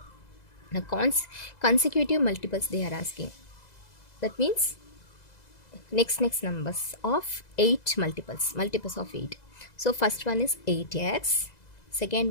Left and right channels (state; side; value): late; right; 2.0 ms